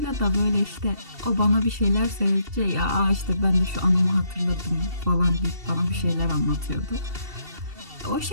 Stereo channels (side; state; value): left; late; 2.7 ms